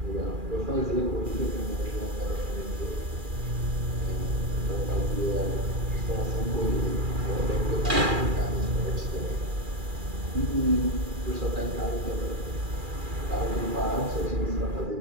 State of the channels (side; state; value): left; late; 2.4 ms